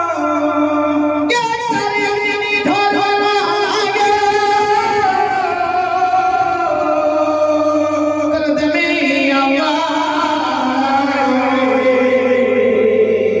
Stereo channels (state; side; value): identical; both; correlation 1.00